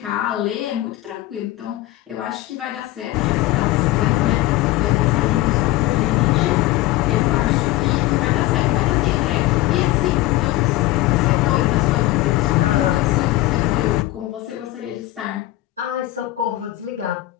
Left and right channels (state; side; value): quieter; right; 16.8 dB